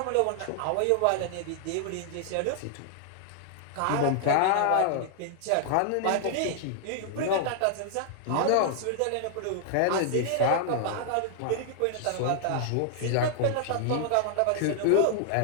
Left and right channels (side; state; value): both; different; correlation -0.01